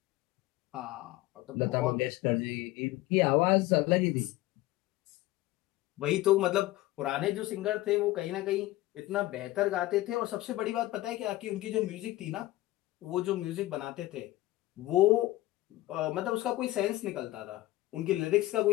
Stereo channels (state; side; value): quieter; right; 17.4 dB